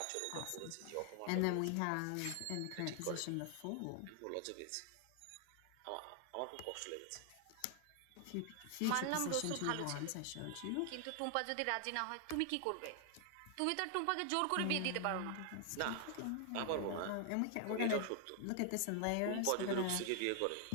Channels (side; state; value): both; different; correlation 0.00